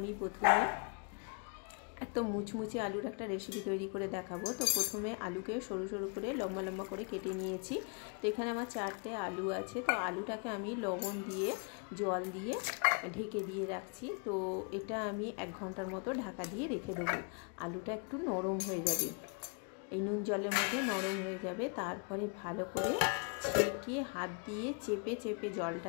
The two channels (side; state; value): right; quieter; 38.8 dB